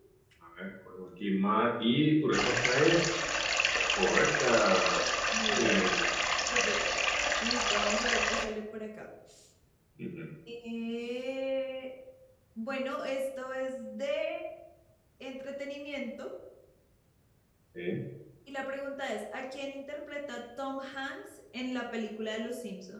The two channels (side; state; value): both; identical; correlation 1.00